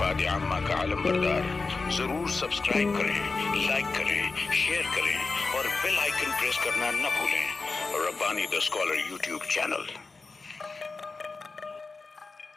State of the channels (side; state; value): right; quieter; 4.1 dB